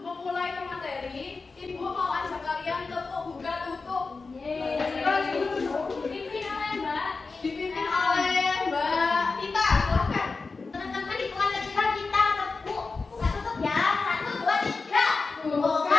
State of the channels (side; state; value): right; quieter; 4.2 dB